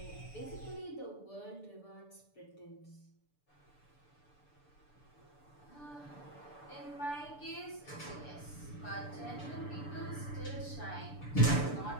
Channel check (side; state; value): right; late; 6.8 ms